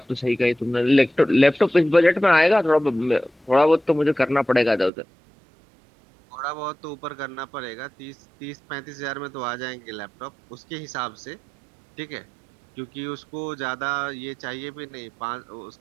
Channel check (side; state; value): left; drops out; at 4.9 s